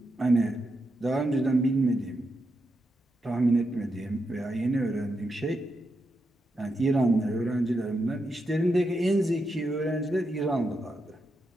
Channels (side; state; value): both; normal; correlation 0.85